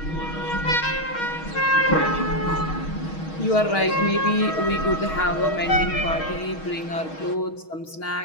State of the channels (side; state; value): right; late; 6.3 ms